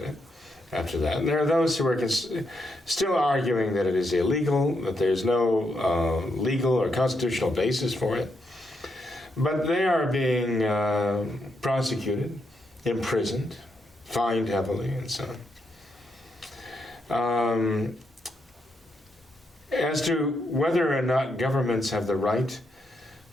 it after that. And there are those who are still arguing that it is illegal, that there's no legal or constitutional basis for it. But they are being prosecuted, imprisoned, fined heavily, and so on. As to whether or not governments have the right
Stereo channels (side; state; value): both; normal; correlation 0.80